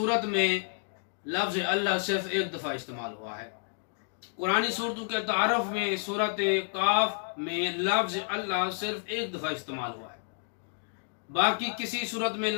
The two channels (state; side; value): silent; right; digital silence